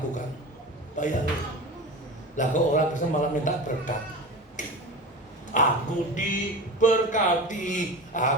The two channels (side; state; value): both; normal; correlation 0.30